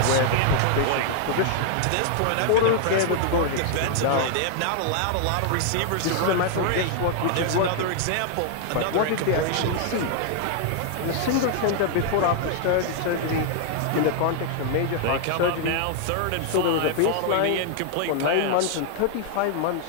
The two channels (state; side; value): different; both; correlation 0.00